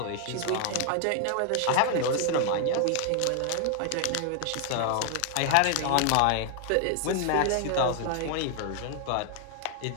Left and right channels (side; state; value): both; different; correlation 0.00